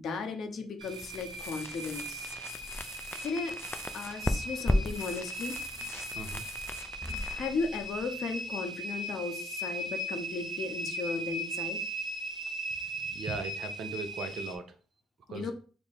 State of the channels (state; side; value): normal; both; correlation 0.63